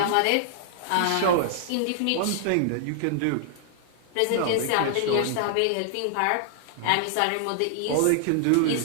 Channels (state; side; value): different; both; correlation -0.01